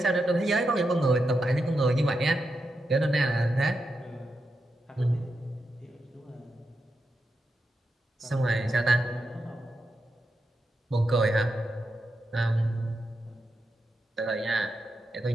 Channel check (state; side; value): normal; both; correlation 0.87